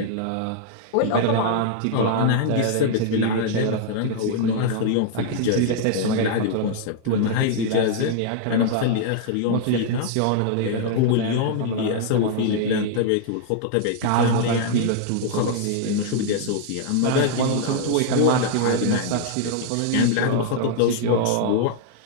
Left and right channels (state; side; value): different; both; correlation -0.01